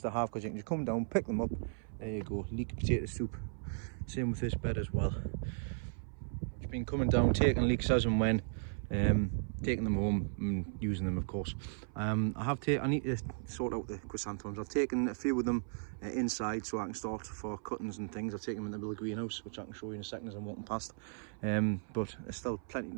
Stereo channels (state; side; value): silent; left; 54 dB below the other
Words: to have, because you can just come down, pick them up. There you go, leek potato soup. Same with this bed as well. Just been coming down, taking leeks as and when. Taking them home and using them, of course. I need to sort out the chrysanthemums. I've taken a few of them inside so I can start for cuttings and things. I've taken them in the little greenhouse, which I can show you in a second as I'm walking past. But there's still